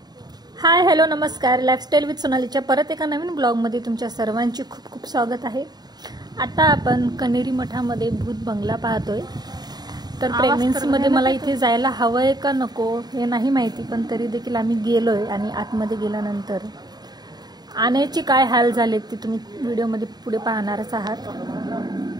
हाय हॅलो नमस्कार, लाईफस्टाईल विथ सोनालीच्या परत एका नवीन ब्लॉगमध्ये तुमच्या सर्वांची खूप खूप स्वागत आहे। आता आपण कनेरी मठामध्ये भूत बंगला पाहतोय। तर प्रेग्नन्सीमध्ये मला इथे जायला हवंय का नको हे नाही माहिती, पण तरी देखील आम्ही गेलोय आणि आतमध्ये गेल्यानंतर आण्याचे काय हाल झालेत ते तुम्ही व्हिडिओमध्ये पुढे पाहणारच आहात।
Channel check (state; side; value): late; left; 0.20 ms